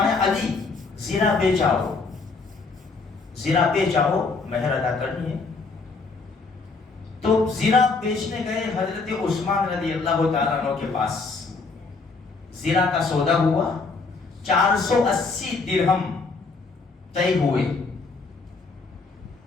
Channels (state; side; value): quieter; right; 4.1 dB